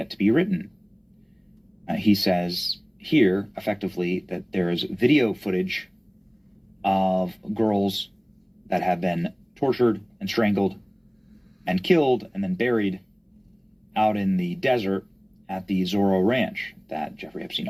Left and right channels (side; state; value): both; identical; correlation 1.00